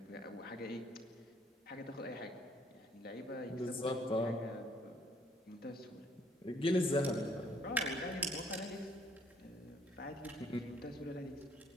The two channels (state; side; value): normal; both; correlation 0.63